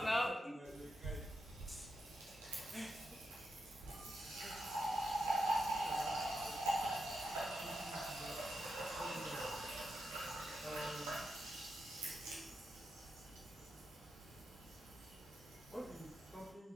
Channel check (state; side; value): normal; both; correlation 0.86